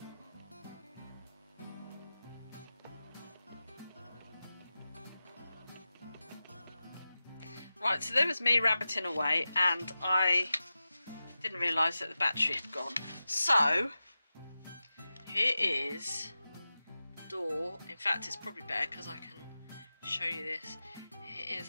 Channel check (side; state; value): both; inverted; correlation -0.93